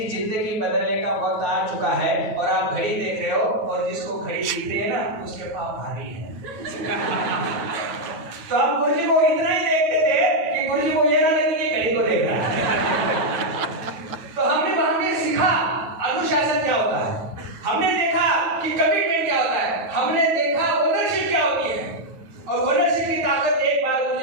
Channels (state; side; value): late; left; 9.2 ms